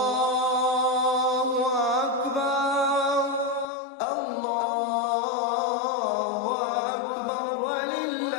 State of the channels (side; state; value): right; drops out; at 3.7 s